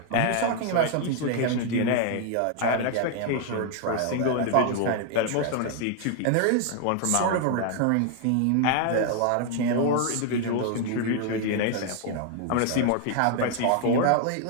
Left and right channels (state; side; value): different; both; correlation 0.00